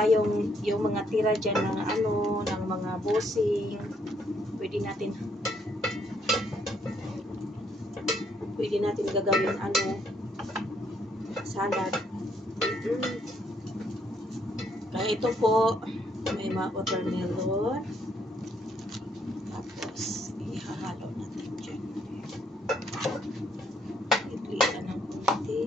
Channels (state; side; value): normal; both; correlation 0.71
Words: yung mga tira dyan ng ng mga bossing. Pwede natin gagawin salad. Kaya ito po, may mga watermelon. Tapos, ihahalo natin dyan. Itlita ng